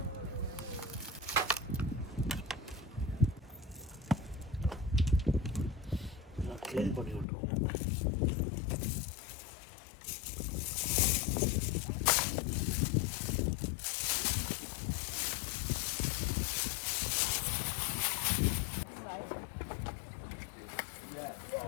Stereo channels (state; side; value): drops out; right; at 7.2 s